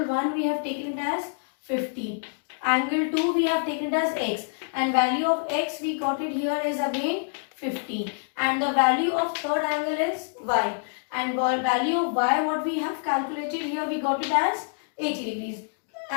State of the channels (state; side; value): silent; right; digital silence